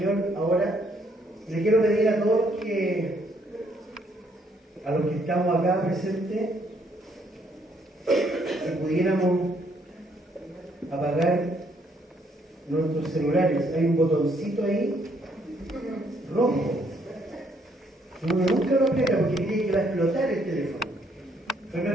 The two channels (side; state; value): both; normal; correlation 0.69